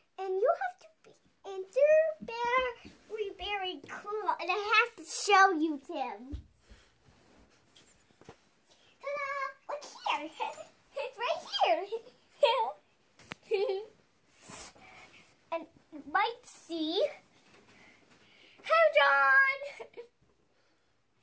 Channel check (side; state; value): both; identical; correlation 1.00